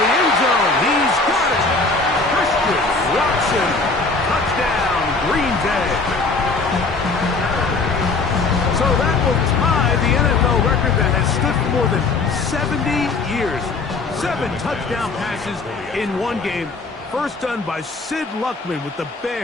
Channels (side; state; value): right; quieter; 3.8 dB